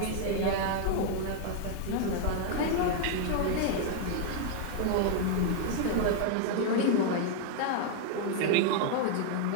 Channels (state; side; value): different; both; correlation 0.00